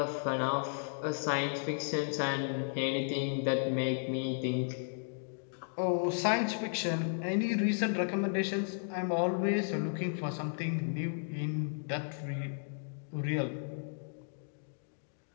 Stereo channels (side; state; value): right; silent; digital silence